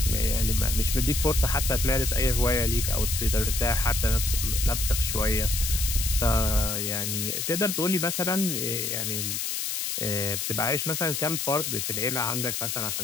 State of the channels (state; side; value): noise; left; hiss, 2 dB below the sound